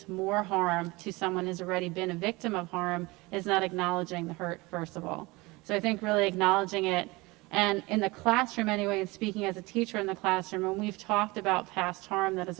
more harm to someone who's already been a victim of harm is not acknowledging the hurt, first of all. So I think really acknowledging it. And in the classroom anyway, and speaking as a teacher in the classroom, when we've talked about past harm that has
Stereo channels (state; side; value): quieter; left; 23.1 dB